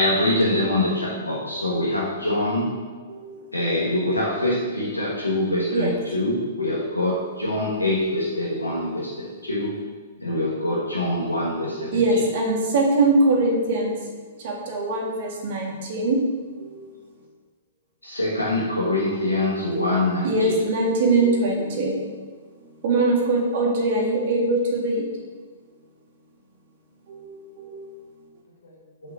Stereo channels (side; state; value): both; inverted; correlation -0.39